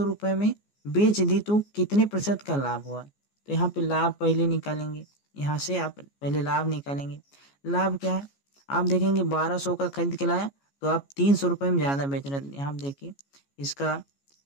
रुपए में बेच दी, तो कितने प्रतिशत का लाभ हुआ? तो यहाँ पे लाभ पहले निकालेंगे, यहाँ से आप पहले लाभ निकालेंगे। लाभ क्या है? आप देखेंगे 1200 का खरीद के लाया तो आप 300 रुपए में ज़्यादा बेच रहे हैं, यहाँ देखिए इसका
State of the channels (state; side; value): late; right; 14 ms